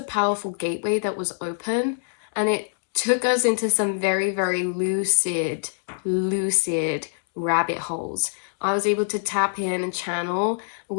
powerful gateway that was open, and it took us into some very, very lucid rabbit holes. I was able to tap in and channel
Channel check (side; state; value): right; silent; digital silence